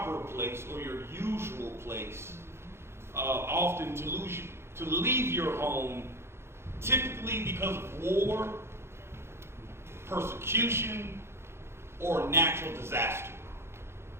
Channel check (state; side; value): late; left; 0.12 ms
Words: place or your usual place, often to leave your home, typically because of war, persecution, or natural disaster.